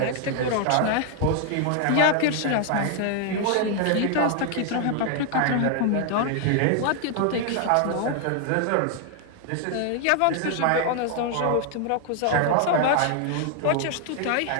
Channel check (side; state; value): both; different; correlation 0.00